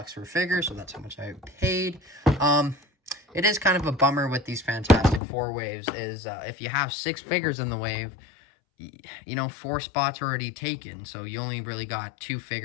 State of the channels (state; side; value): drops out; right; at 5.2 s